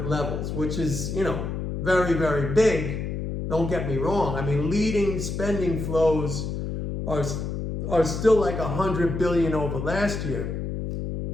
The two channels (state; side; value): noise; left; hum, 4 dB below the sound